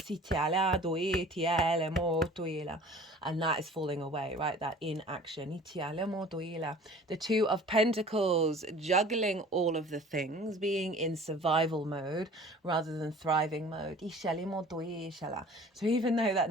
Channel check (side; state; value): both; normal; correlation 0.46